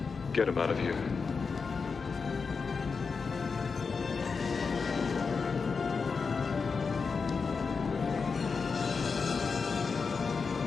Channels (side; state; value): right; quieter; 5.1 dB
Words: Get him out of here.